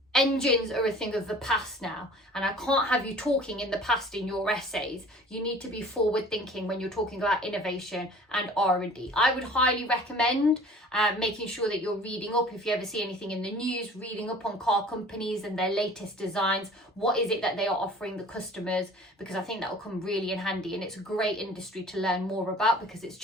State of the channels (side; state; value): both; normal; correlation 0.47